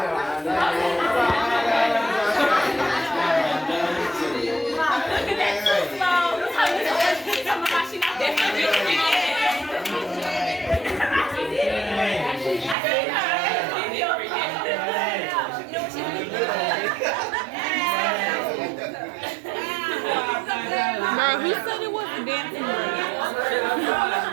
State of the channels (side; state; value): left; drops out; at 12.8 s